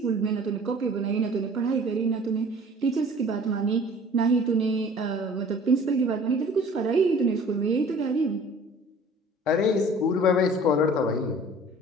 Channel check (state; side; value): normal; both; correlation 0.48